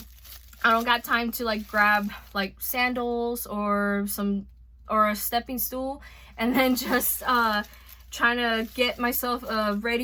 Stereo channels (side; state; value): both; identical; correlation 1.00